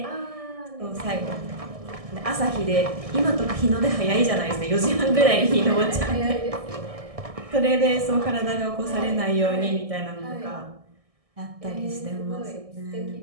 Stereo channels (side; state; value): left; late; 1.6 ms